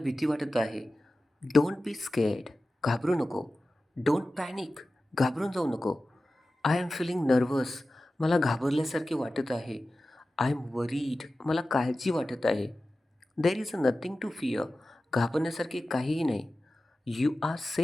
वाटत आहे. Don't be scared. घाबरू नको. Don't panic. घाबरून जाऊ नको. I am feeling nervous. मला घाबरल्यासारखे वाटत आहे. I am worried. मला काळजी वाटत आहे. There is nothing to fear. घाबरण्यासारखे काहीही नाही. You are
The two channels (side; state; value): both; normal; correlation 0.95